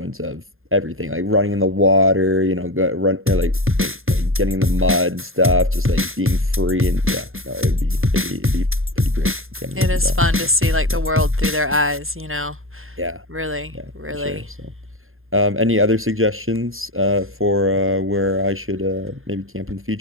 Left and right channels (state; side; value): late; left; 0.61 ms